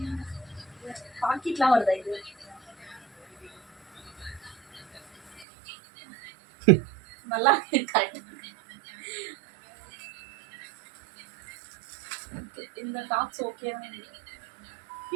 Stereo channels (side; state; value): left; drops out; at 5.5 s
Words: பாக்கெட்லாம் வருதா இது? நல்லா கரெக்ட். இந்த டாப்ஸ் ஓகே.